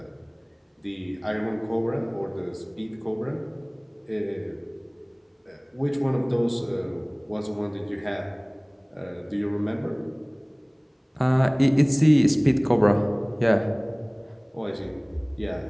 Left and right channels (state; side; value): identical; both; correlation 1.00